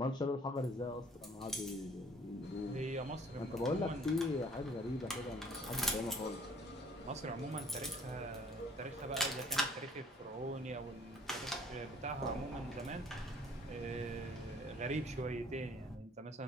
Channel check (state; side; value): normal; both; correlation 0.56